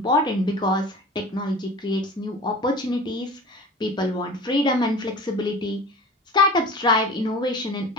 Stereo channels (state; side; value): normal; both; correlation 0.38